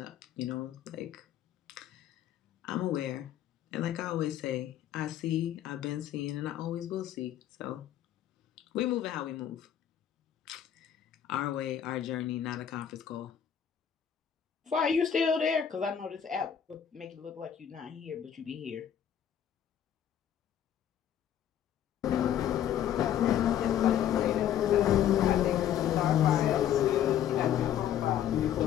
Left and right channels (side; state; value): right; quieter; 9.9 dB